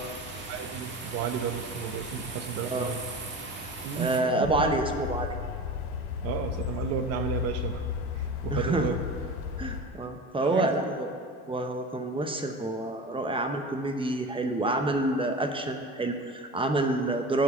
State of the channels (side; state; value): both; normal; correlation 0.32